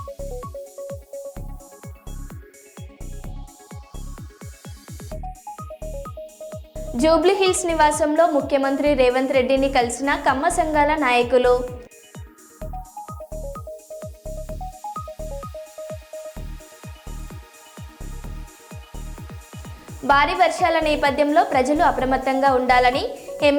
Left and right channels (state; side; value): identical; both; correlation 1.00